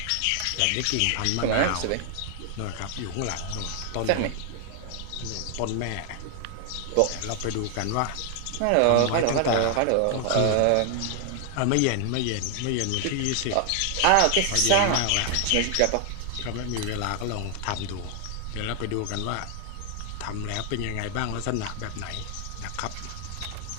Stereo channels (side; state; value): both; different; correlation 0.00